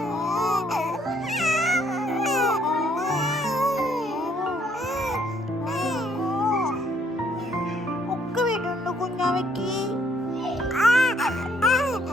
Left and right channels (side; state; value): both; normal; correlation 0.67